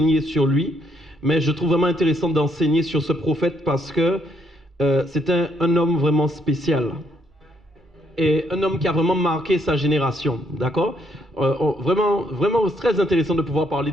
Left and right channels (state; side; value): normal; both; correlation 0.72